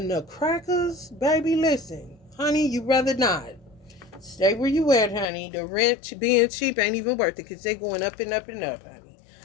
the crackers, baby, listen. Honey, you rather not. Stay where you at, honey. The rent being cheap ain't even worth it because they going up and up and up, honey.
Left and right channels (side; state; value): right; drops out; at 5.2 s